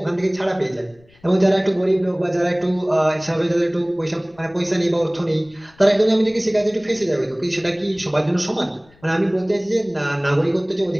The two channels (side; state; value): left; noise; rumble, 30 dB below the sound